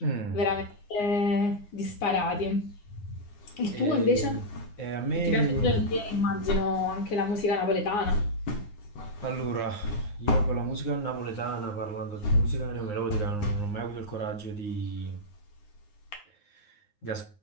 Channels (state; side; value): late; right; 9.6 ms